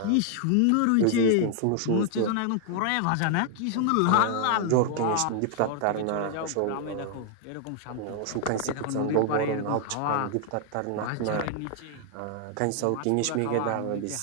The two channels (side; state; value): both; different; correlation 0.00